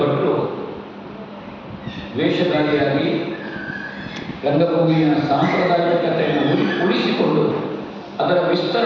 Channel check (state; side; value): identical; both; correlation 1.00